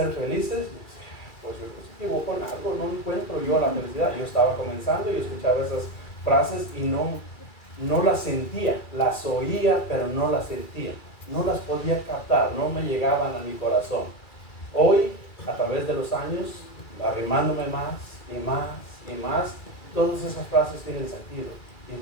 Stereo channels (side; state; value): right; late; 2.3 ms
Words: felices, pues yo me equivoco en algo, no encuentro yo la felicidad. Yo estaba comenzando y escuchaba esas frases y no las sentía, las oía, pero no las sentía, no las podía captar, no me llegaban a mi corazón. Hoy, a través de los años, arrimándome más y más y más, todas esas frases tienen sentido. Y